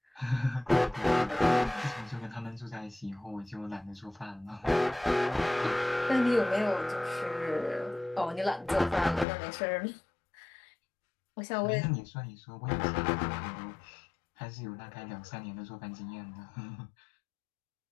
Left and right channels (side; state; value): right; drops out; at 9.2 s